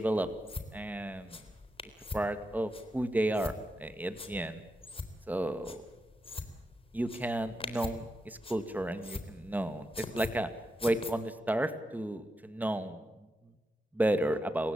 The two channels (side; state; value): both; normal; correlation 0.86